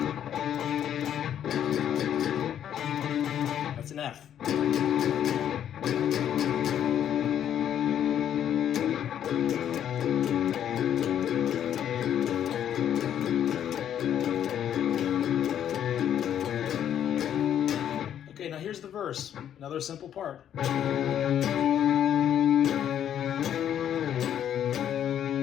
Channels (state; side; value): quieter; right; 10.0 dB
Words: that's an F. Okay, now here's the verse, another simple part.